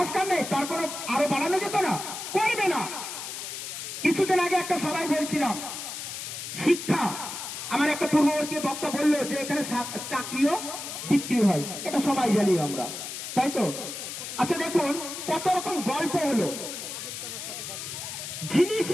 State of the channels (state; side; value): noise; left; hiss, 7 dB below the sound